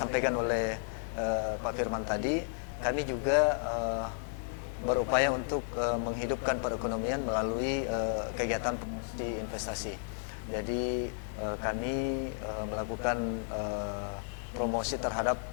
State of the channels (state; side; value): silent; right; digital silence